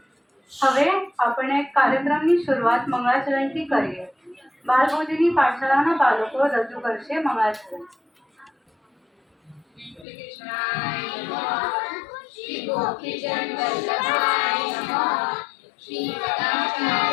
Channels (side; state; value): right; drops out; at 10.1 s